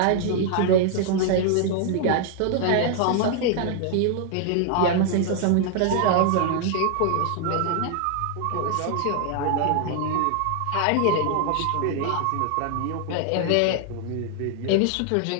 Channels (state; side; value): different; both; correlation 0.00